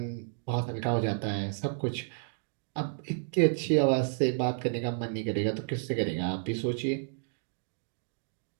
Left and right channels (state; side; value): silent; left; digital silence